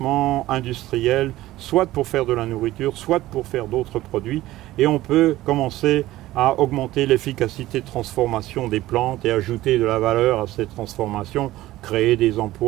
industriel, soit pour faire de la nourriture, soit pour faire d'autres produits, et on peut commencer à augmenter l'efficacité de transformation des plantes et ajouter de la valeur à cette transformation, créer des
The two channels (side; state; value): left; quieter; 16.2 dB